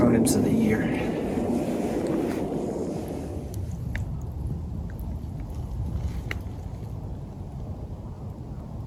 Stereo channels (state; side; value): identical; both; correlation 1.00